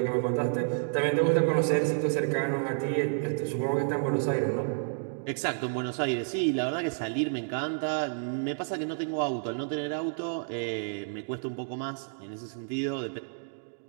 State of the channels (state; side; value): silent; left; digital silence